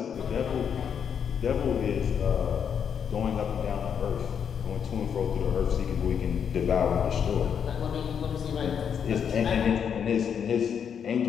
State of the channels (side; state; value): right; quieter; 7.6 dB